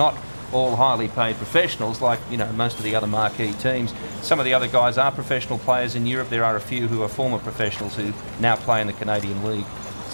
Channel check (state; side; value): inverted; both; correlation -1.00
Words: all highly paid professionals like most of the other marquee teams. Some of the other guys are professional players in Europe. There are a few who are former professionals who now play in the Canadian League.